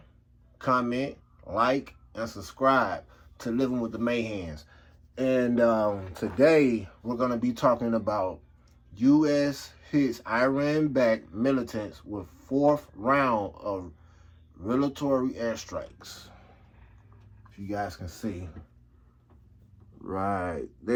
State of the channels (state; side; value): identical; both; correlation 1.00